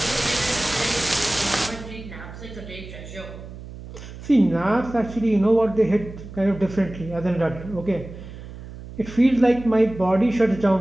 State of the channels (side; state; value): right; noise; hum, 14 dB below the sound